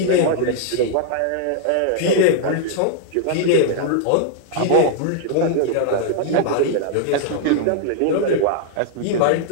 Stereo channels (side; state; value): both; different; correlation -0.01